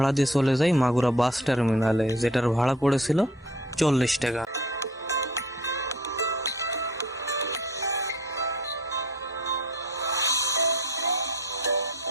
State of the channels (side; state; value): both; normal; correlation 0.50